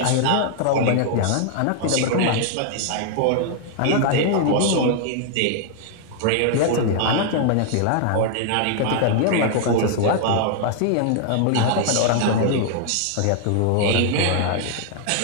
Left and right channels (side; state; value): both; different; correlation 0.00